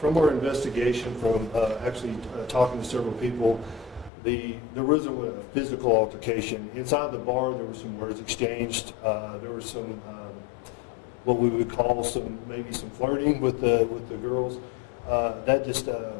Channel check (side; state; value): right; drops out; at 4.1 s